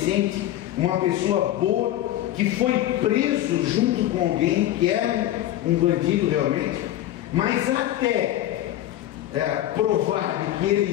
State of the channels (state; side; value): quieter; right; 13.4 dB